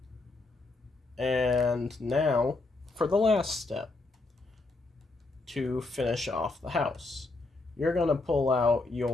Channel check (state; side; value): quieter; right; 3.3 dB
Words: And now for the last step, to finish off the house, you're going to pull out